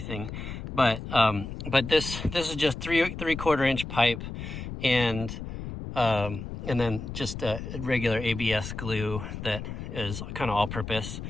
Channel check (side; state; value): left; noise; rumble, 8 dB below the sound